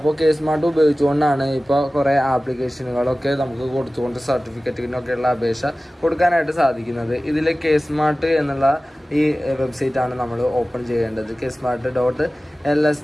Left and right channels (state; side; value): normal; both; correlation 0.97